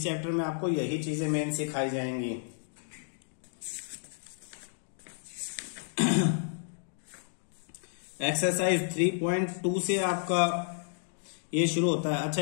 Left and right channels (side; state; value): right; silent; digital silence